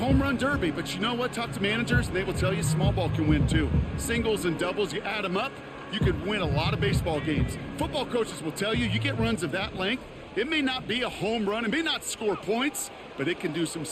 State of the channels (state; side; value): identical; both; correlation 1.00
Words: run derby, but you know what? Talk to managers, and they will tell you small ball can win too. Singles and doubles, you add them up, you could win a lot of baseball games. Football coaches will tell you, you get runs of that length, it may not be a home run, it may not score points, but it can do some